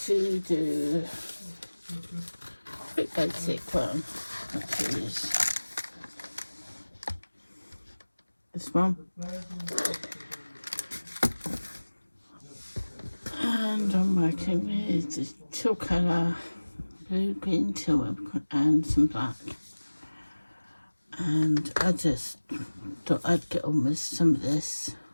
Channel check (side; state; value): both; inverted; correlation -1.00